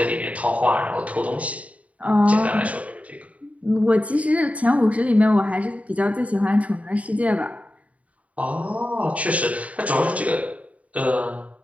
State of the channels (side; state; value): left; late; 0.067 ms